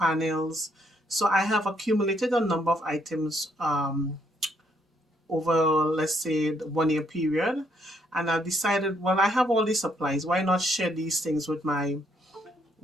So I have accumulated a number of items over, let's say, the 1 year period. And I decided, well, I have all these supplies. Why not share these things with my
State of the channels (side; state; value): both; normal; correlation 0.71